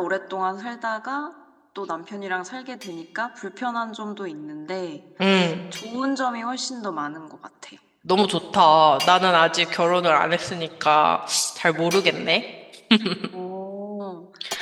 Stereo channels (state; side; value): identical; both; correlation 1.00